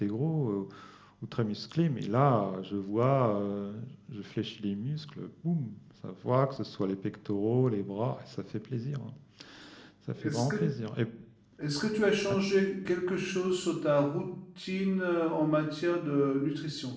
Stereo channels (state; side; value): identical; both; correlation 1.00